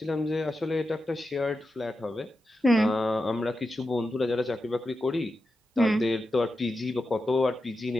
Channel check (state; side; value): normal; both; correlation 0.90